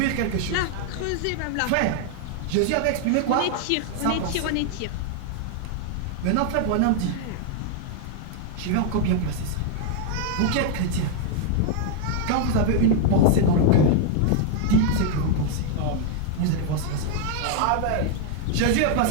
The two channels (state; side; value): different; both; correlation 0.00